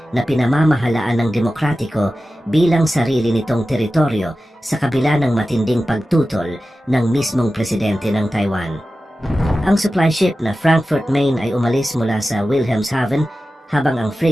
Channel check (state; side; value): normal; both; correlation 0.94